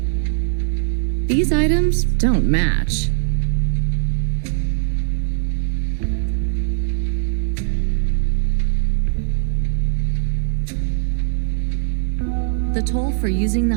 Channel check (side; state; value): left; silent; digital silence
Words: These items don't match. The toll for using the